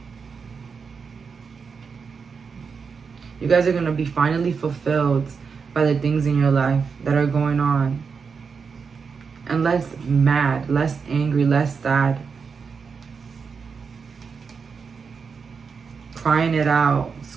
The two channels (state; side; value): quieter; left; 5.6 dB